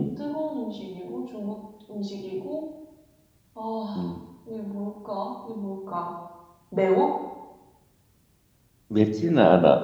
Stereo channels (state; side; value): identical; both; correlation 1.00